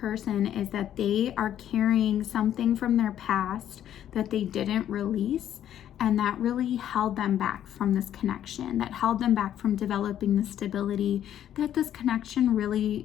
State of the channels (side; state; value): right; quieter; 10.8 dB